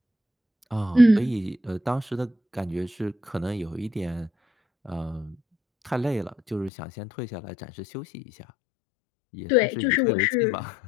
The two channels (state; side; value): drops out; right; at 6.7 s